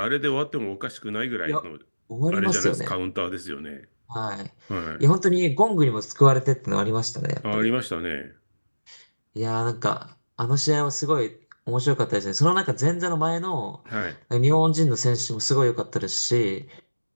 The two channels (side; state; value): both; inverted; correlation -1.00